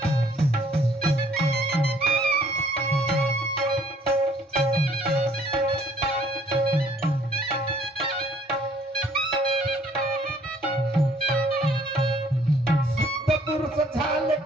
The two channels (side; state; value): both; normal; correlation 0.60